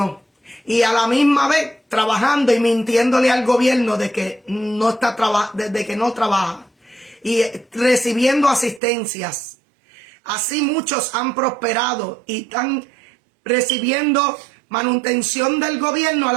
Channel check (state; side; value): drops out; left; at 8.8 s